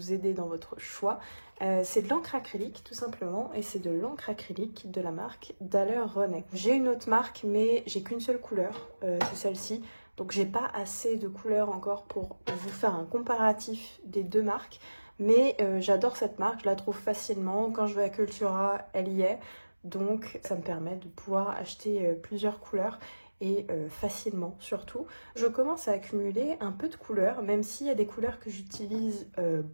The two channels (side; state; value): both; inverted; correlation -1.00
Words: aider dans votre choix. C'est de l'encre acrylique tout simplement et c'est de l'encre acrylique de la marque Daler Rowney. J'ai une autre marque mais j'ai qu'une seule couleur, c'est celle-ci. Donc j'ai pas assez de couleurs encore pour vous faire un comparatif des deux marques. Mais j'adore cette marque, je la trouve facilement. Quand je vais à Cultura, elle y est. Donc ça me permet de pouvoir acheter plusieurs couleurs et facilement surtout. Je commence à accumuler un peu de couleurs, même s'il y a des couleurs que j'utilise